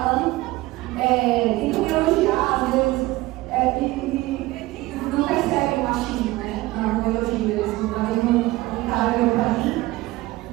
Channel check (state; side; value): quieter; left; 19.2 dB